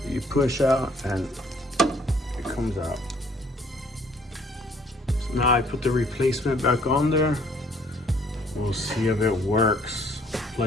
you push out and it comes out. So now I put the replacement back on there. We'll see if it works.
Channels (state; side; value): normal; both; correlation 0.61